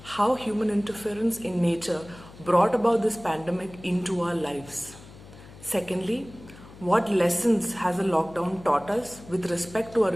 how human interference in nature brought about this pandemic into our lives. Secondly, what lessons has a lockdown taught us with respect to our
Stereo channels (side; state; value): left; noise; hum, 19 dB below the sound